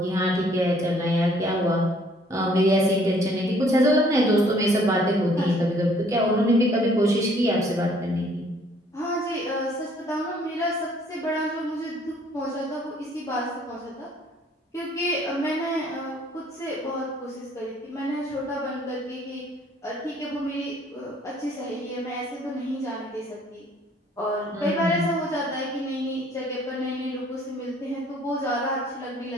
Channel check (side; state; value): both; normal; correlation 0.60